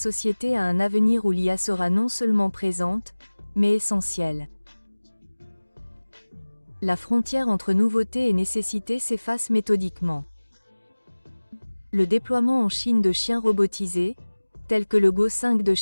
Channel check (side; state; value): both; inverted; correlation -1.00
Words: à un avenir où l'IA sera non seulement présente, mais essentielle. La frontière entre nouveauté et nécessité s'efface méthodiquement. Le déploiement en Chine de chiens robotisés, tels que le Go 5 de